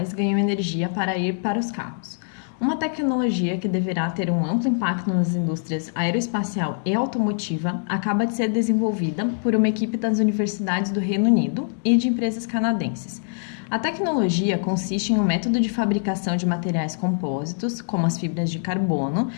ganham energia para ir para os carros. Uma tecnologia que deverá ter um amplo impacto nas indústrias aeroespacial e automotiva acaba de ser desenvolvida por uma equipe das universidades do Reino Unido e de empresas canadenses. A tecnologia consiste em um método de fabricação de materiais compósitos, como as fibras de carbono,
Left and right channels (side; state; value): right; silent; digital silence